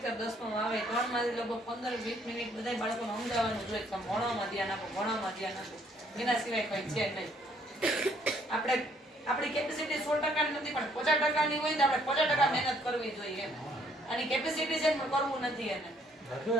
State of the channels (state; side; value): normal; both; correlation 0.66